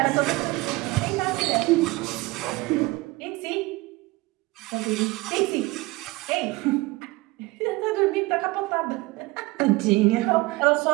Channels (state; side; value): quieter; left; 22.1 dB